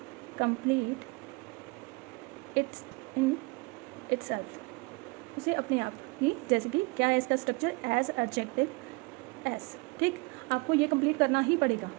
complete it's in itself, उसे अपने आप ही, जैसे कि क्या है इसका स्ट्रक्चर, एज एडजेक्टिव एस, ठीक, आपको ये कंप्लीट करना ही पड़ेगा।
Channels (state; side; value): quieter; left; 27.3 dB